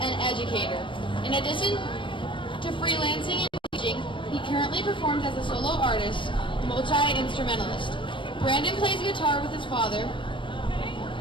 and educator. In addition to freelancing and teaching, he currently performs as a solo artist, multi-instrumentalist. Brandon plays guitar with his father,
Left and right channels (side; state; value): right; late; 0.24 ms